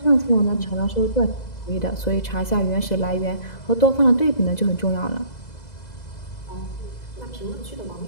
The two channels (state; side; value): late; right; 2.0 ms